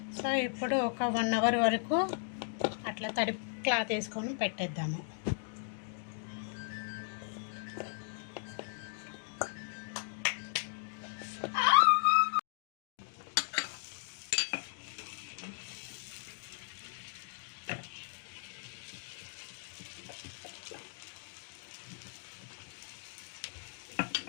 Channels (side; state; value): right; silent; digital silence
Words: సో ఇప్పుడు ఒక 1 అవర్ వరకు అట్లా తడి క్లాత్ వేసుకొని పెట్టేద్దాము.